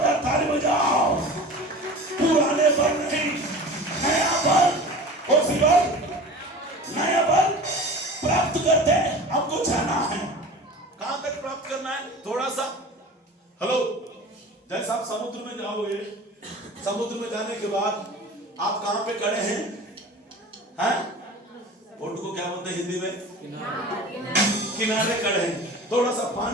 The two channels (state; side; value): normal; both; correlation 0.37